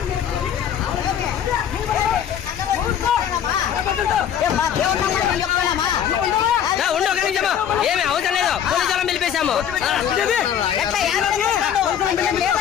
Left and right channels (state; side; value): quieter; right; 9.1 dB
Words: ఉండు, ఒక నిమిషం. ఏమి అవసరం లేదు, పోలీసు వాళ్ళని పిలిపేశాము.